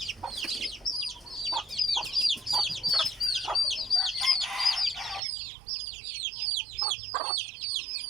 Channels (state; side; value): drops out; left; at 5.2 s